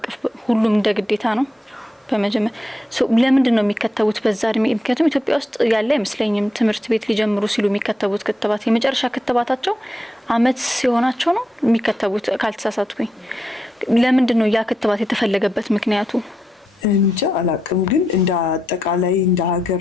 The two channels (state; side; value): normal; both; correlation 0.84